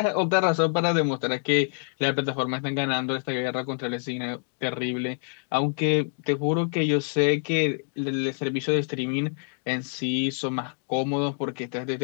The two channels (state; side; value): silent; right; 61 dB below the other